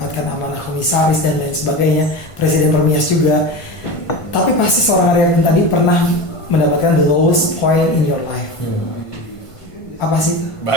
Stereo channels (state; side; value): late; right; 1.5 ms